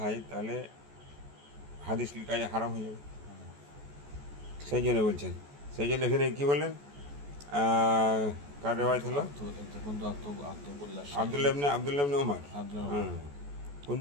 তাহলে হাদিস লিখা হারাম হয়ে যাবে। সেই জন্য বলছেন, সেই জন্য এখানে কী বললেন? কার রেওয়ায়াত হলো? আব্দুল্লাহ ইবনে ওমর।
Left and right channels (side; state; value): left; late; 14 ms